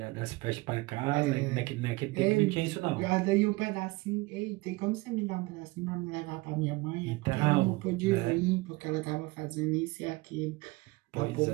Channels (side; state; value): left; quieter; 22.8 dB